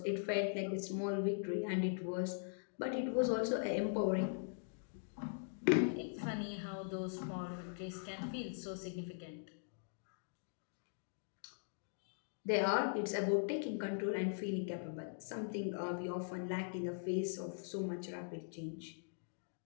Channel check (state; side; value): silent; right; digital silence